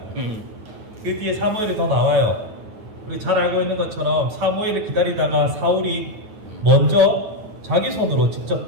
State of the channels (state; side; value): late; left; 9.0 ms